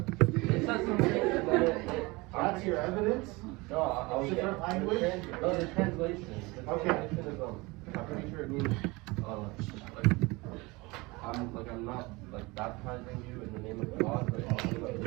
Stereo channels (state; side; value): quieter; left; 23.9 dB